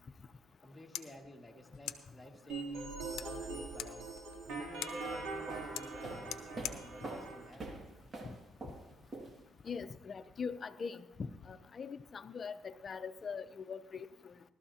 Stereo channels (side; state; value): both; normal; correlation 0.67